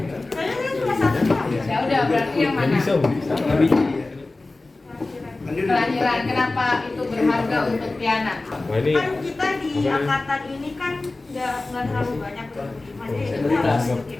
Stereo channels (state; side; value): quieter; right; 3.2 dB